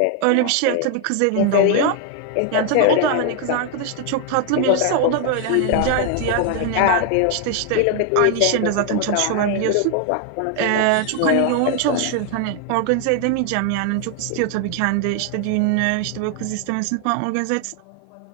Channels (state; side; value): different; both; correlation 0.00